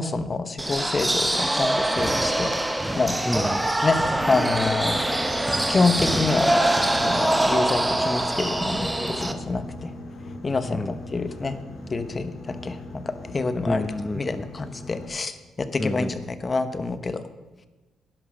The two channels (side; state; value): both; normal; correlation 0.92